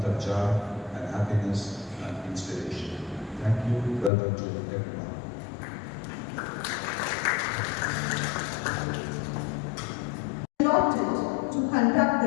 of joy and happiness and inspiration. Thank you. Welcome to everyone. Allotted to conduct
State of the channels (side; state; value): right; drops out; at 4.1 s